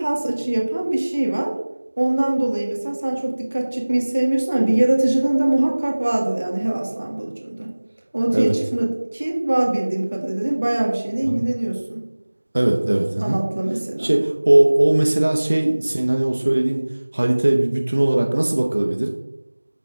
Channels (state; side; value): inverted; both; correlation -1.00